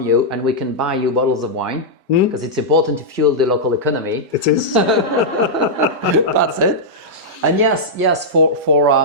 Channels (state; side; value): normal; both; correlation -0.08